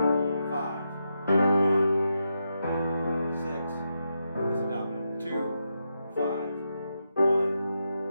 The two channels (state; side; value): inverted; both; correlation -0.85